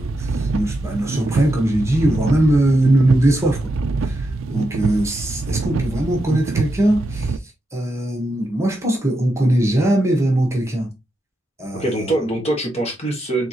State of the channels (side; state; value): both; normal; correlation 0.85